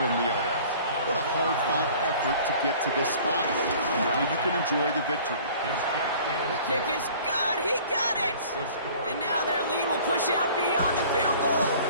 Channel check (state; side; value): inverted; both; correlation -0.48